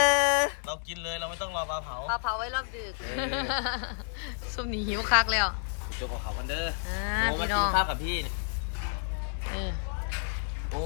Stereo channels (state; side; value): silent; right; digital silence